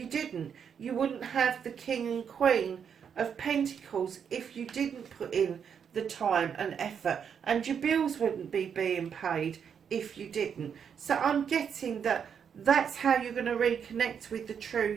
didn't. You wouldn't have the king and queen of Pentacles if you didn't put in the time and effort, and your bills wouldn't be being paid if you didn't. So I'm getting that that's how you're going to reconnect with the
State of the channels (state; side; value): quieter; left; 7.4 dB